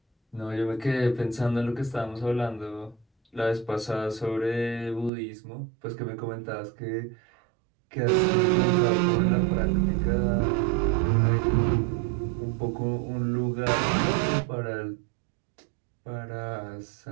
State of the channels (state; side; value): drops out; left; at 5.1 s